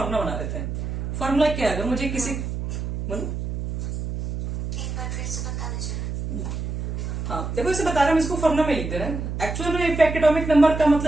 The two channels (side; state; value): right; noise; hum, 4 dB below the sound